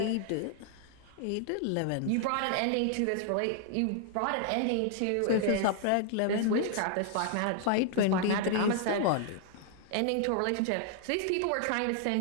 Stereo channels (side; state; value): both; different; correlation -0.01